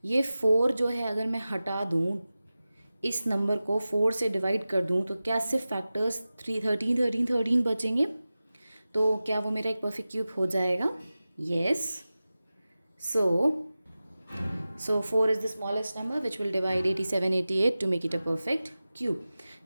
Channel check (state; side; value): inverted; both; correlation -0.96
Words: ये 4 जो है अगर मैं हटा दूँ, इस नंबर को 4 से डिवाइड कर दूँ, तो क्या सिर्फ फैक्टर्स 13 बचेंगे. तो क्या वो मेरा एक परफेक्ट क्यूब हो जाएगा. Yes. So 4 is the smallest number which will divide 87 88 to make it a perfect cube.